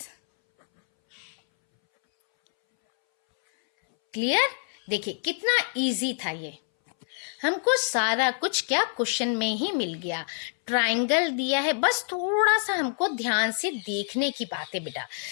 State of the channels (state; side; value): silent; right; 60 dB below the other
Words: Clear? देखिए कितना इजी था ये, हमको सारा कुछ क्या क्वेश्चन में ही मिल गया। ट्राइंगल दिया है, बस थोड़ा सा हमको ध्यान से देखने की बात है बेटा।